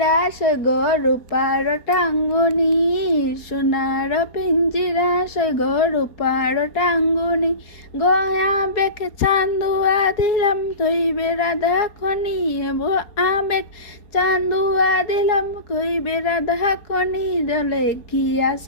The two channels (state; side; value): late; right; 4.3 ms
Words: সৈগ রূপার টাঙ্গুনি, সোনার পিঞ্জিরা সৈগ রূপার টাঙ্গুনি। গয়া বেখ চান্দুয়া দিলাম কইবে রাধা খনি, এবো আবেগ চান্দুয়া দিলাম কইবে রাধা খনি। জলে